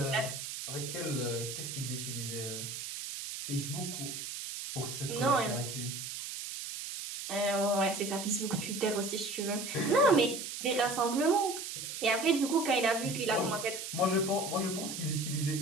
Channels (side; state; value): right; noise; hiss, 7 dB below the sound